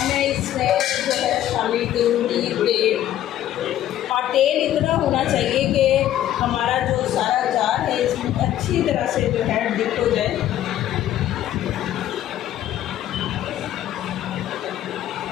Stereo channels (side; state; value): right; quieter; 12.3 dB